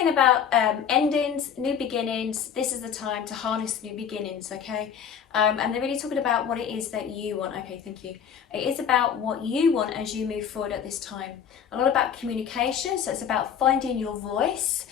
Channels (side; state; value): right; quieter; 7.9 dB